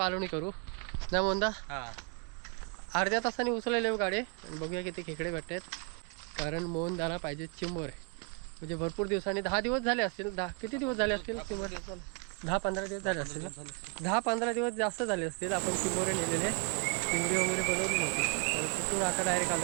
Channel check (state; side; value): quieter; left; 34.2 dB